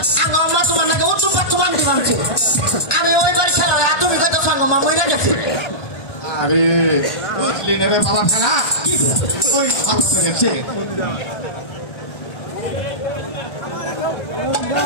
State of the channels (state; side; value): late; right; 1.2 ms